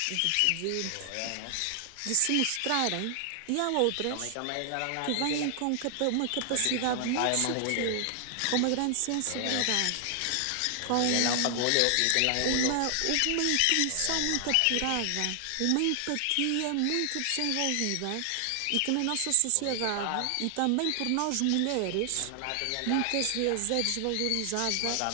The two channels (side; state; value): both; different; correlation 0.00